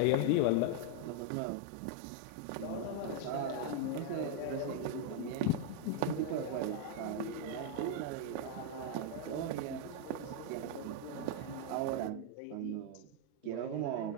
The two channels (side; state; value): both; different; correlation 0.00